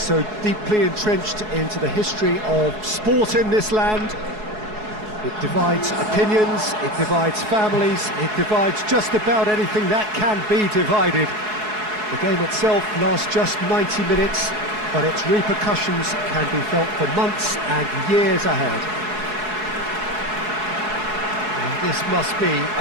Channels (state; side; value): late; left; 4.7 ms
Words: deeply entrenched into the history of sport in this land. It divides opinions, it divides families, it divides just about anything that can be divided. The game itself lasts just 90 minutes, but its repercussions can be felt for months and years ahead. And this must be